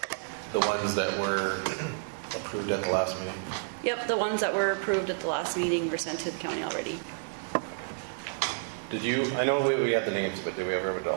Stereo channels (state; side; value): silent; left; digital silence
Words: The ones that were approved at the last meeting? Yep, the ones that were approved at the last meeting were sent to the county already. Did you, I know we had the names, but did we ever have a